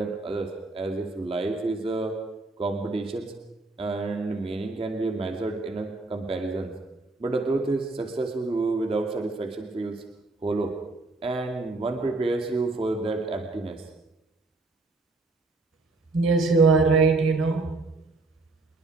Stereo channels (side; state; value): left; quieter; 3.4 dB